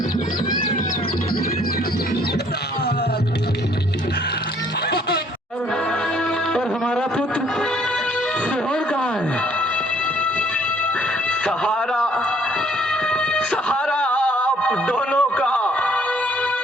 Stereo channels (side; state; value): both; normal; correlation 0.62